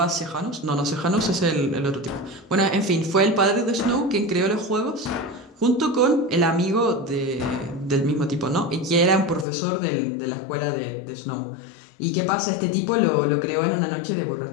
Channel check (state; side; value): drops out; right; at 9.5 s